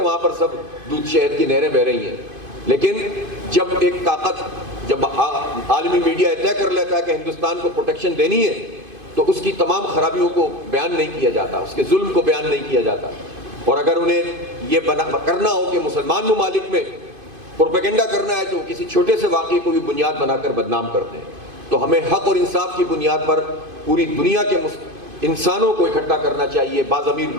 وہاں پر سب دودھ شہد کی نہریں بہہ رہی ہیں، لیکن جب ایک طاقت، جب عالمی میڈیا طے کر لیتا ہے کہ ہندوستان کو پروٹیکشن دینی ہے، تو اس کی تمام خرابیوں کو بیان نہیں کیا جاتا، اس کے ظلم کو بیان نہیں کیا جاتا۔ اور اگر انہیں یہ کرنا ہو کہ مسلمان ممالک میں پروپیگنڈا کرنا ہے تو کسی چھوٹے سے واقعے کو بھی بنیاد بنا کر بدنام کرتے ہیں۔ تو ہمیں حق اور انصاف کی بنیاد پر پوری دنیا کے انسانوں کو اکٹھا کرنا چاہیے، باضمیر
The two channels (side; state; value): left; late; 2.5 ms